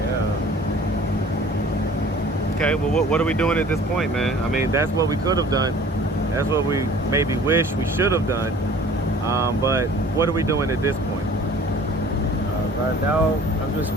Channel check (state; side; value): normal; both; correlation 0.49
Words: Okay, well, what are we doing at this point, man? I mean, that's what we could have done. That's what we maybe wish we should have done. But what are we doing at this point? Right now, I'm just